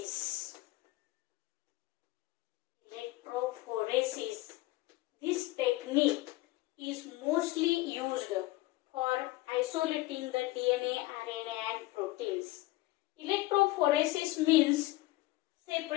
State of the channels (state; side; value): quieter; right; 18.8 dB